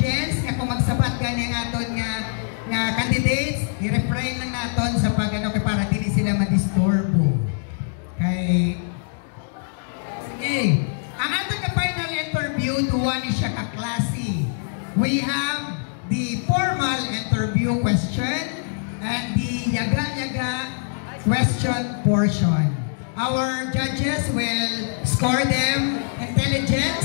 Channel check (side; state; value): right; silent; digital silence